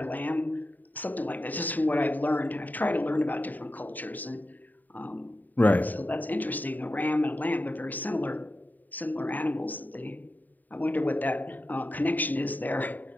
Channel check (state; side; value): late; right; 0.086 ms